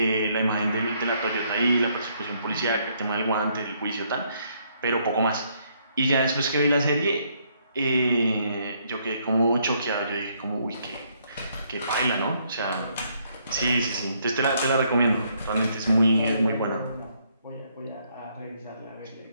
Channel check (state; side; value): inverted; both; correlation -0.70